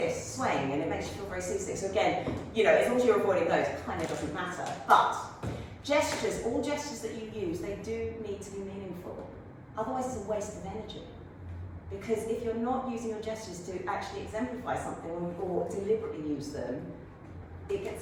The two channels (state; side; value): identical; both; correlation 1.00